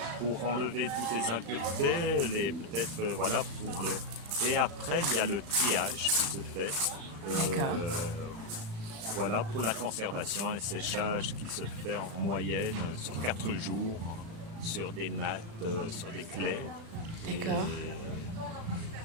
pour enlever toutes les impuretés, peut-être voilà et après il y a le triage qui se fait. Voilà pour la conservation, un séchage qui se fait en moyenne sur 4 jours sur des nattes, sur des claies. D'accord.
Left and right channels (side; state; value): left; late; 36 ms